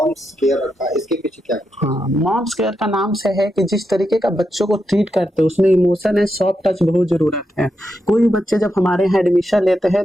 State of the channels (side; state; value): both; normal; correlation 0.85